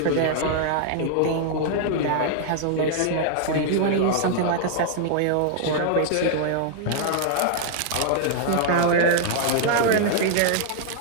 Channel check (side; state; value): both; different; correlation -0.01